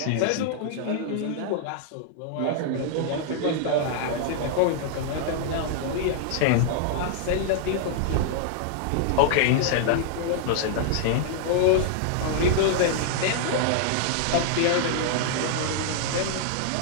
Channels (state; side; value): different; both; correlation -0.01